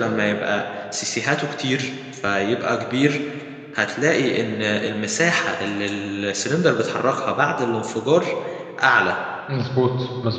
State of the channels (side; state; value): both; identical; correlation 1.00